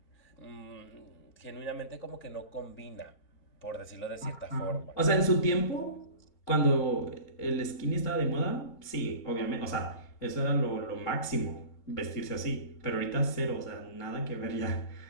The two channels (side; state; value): right; late; 3.7 ms